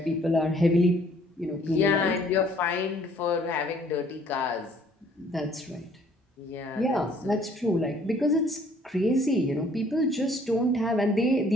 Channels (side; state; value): both; normal; correlation 0.60